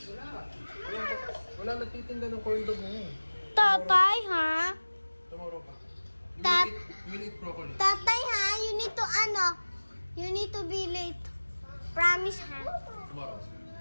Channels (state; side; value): inverted; both; correlation -1.00